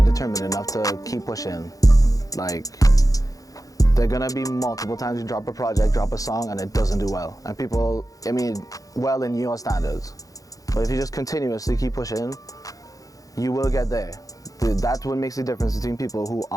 determined enough to keep pushing. Like, there are gonna be multiple times you drop a project, drop a song, and it doesn't do well. And people, I mean, well in your standards. But if you just continuously keep pushing, you will get there. That's what makes the difference between people who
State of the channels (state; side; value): late; right; 0.17 ms